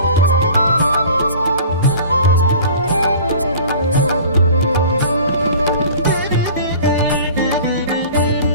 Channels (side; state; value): both; inverted; correlation -0.43